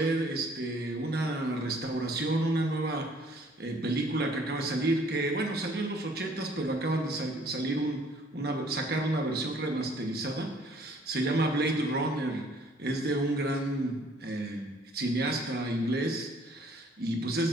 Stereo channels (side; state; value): both; normal; correlation 0.59